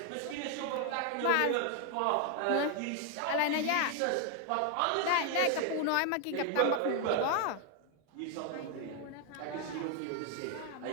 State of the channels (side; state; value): both; different; correlation 0.00